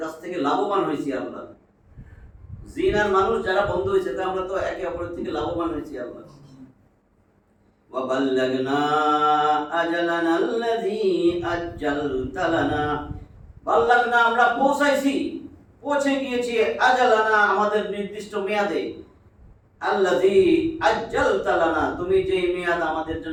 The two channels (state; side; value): identical; both; correlation 1.00